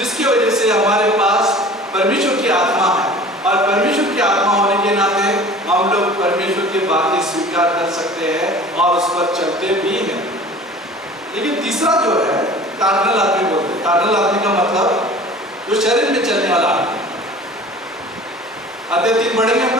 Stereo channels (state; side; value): normal; both; correlation 0.44